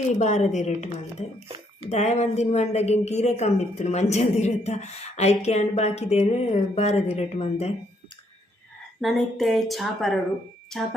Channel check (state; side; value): normal; both; correlation 0.71